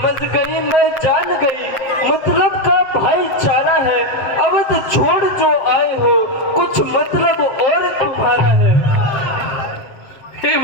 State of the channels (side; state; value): right; late; 7.9 ms